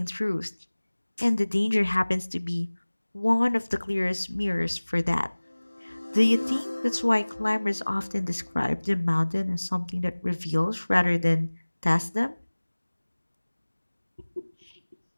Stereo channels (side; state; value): both; inverted; correlation -1.00